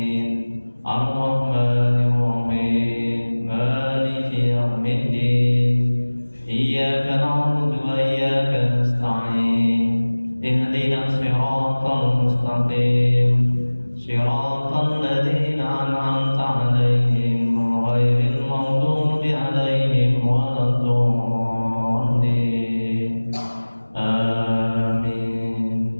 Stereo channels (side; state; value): both; inverted; correlation -1.00